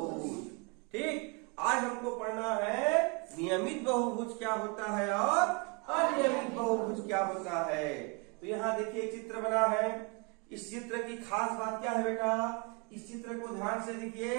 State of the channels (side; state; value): left; quieter; 32.2 dB